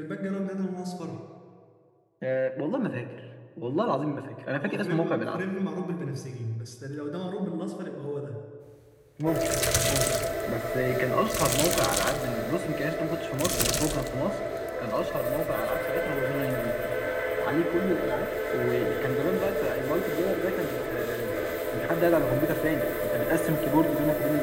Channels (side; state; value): both; identical; correlation 1.00